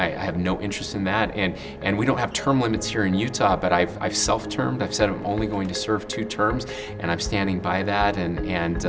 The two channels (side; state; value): both; identical; correlation 1.00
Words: have no interest in that, and we don't have term limits here in Utah, but I've self-termed. I've said I'm only going to serve 2 terms, and I'm standing by that, and